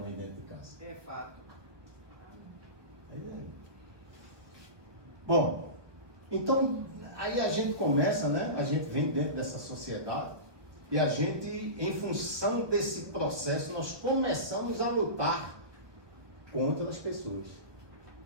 dentro de casa. É fato. Bom, então aí a gente começa, né? A gente vem dentro dessa sociedade e a gente, em função desse processo, nós começamos a lutar contra as pessoas.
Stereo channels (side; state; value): left; late; 1.4 ms